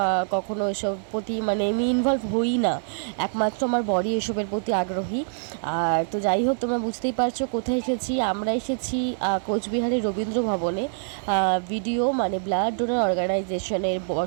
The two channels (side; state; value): left; silent; digital silence